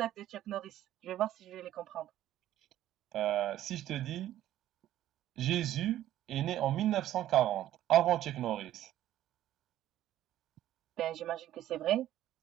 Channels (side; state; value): left; quieter; 12.9 dB